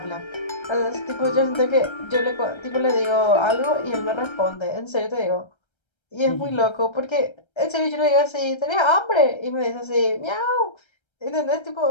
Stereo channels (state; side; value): late; right; 1.3 ms